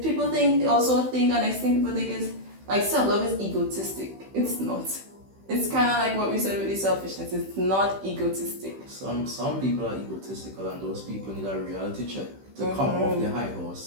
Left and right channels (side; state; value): left; late; 15 ms